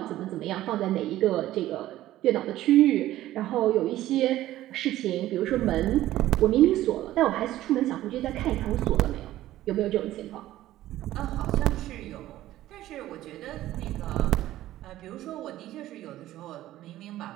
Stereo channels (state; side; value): quieter; left; 14.6 dB